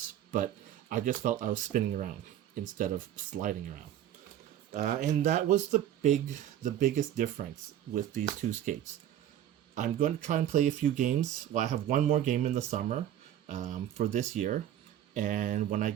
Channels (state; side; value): quieter; left; 11.2 dB